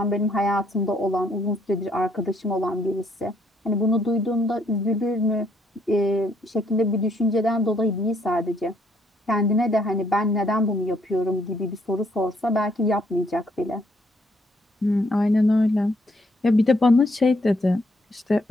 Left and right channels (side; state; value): both; normal; correlation 0.70